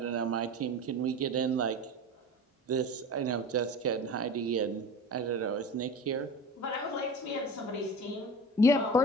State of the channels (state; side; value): normal; both; correlation 0.34